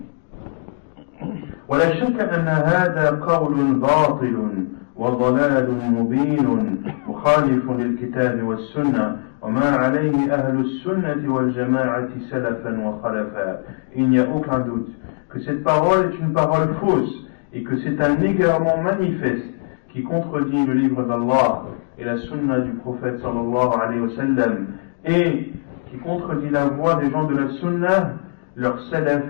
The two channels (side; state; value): right; silent; digital silence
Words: ولا شك أن هذا قول باطل وضلال مبين مخالف للكتاب والسنة وما عليه أهل السنة والجماعة سلفا وخلفا. Il n'y a aucun doute que cette parole est une parole fausse et que c'est un égarement manifeste qui contredit le livre d'Allah et la sunna du prophète sallallahu alayhi wa sallam, et qui contredit la voie des gens de la sunna, leur salaf